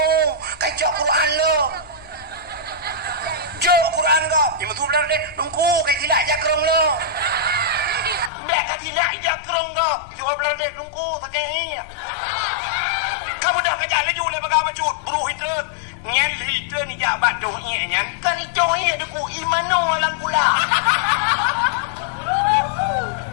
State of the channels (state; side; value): drops out; right; at 8.3 s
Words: kacau Quran lo jo Quran ko yang betul belara del dongko kayak tidak jakrong lo bek tidak jakrong do jual belara del dongko sakit kamu dah kerja lagi oleh bagaimana cut buru hitren nyan hitren ni jabat doh nyan kan itu ada ku imano lang kula